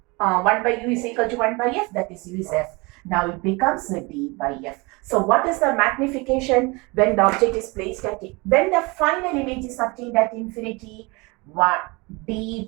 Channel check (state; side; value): quieter; left; 26.4 dB